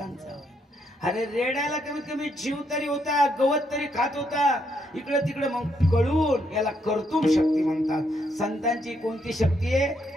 अरे रेड्याला कमीत कमी जीव तरी होता. गवत तरी खात होता. इकडं तिकडं मग कळून याला कर्तुम शक्ती म्हणतात. संतांची कोणती शक्ती आहे.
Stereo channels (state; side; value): normal; both; correlation 0.75